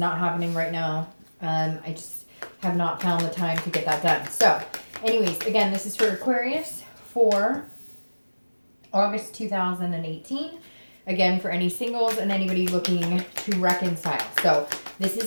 happening right now. I just have not found the time to get that done. So, anyways, again, this is for Aquarius for August 2018. Again, for any singles and anybody looking to reconcile. So this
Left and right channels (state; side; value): inverted; both; correlation -1.00